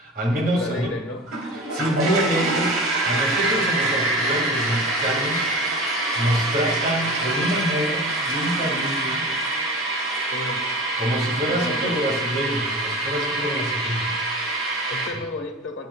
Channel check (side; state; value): both; normal; correlation 0.33